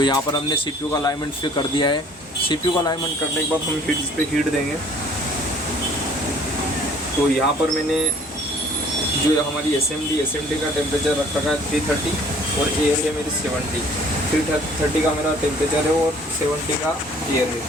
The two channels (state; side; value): normal; both; correlation 0.55